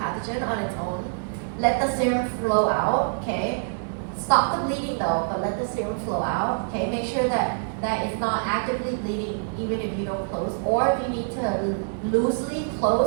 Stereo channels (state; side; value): silent; left; digital silence